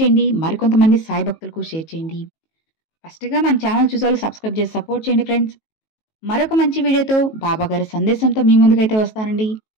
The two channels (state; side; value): late; right; 19 ms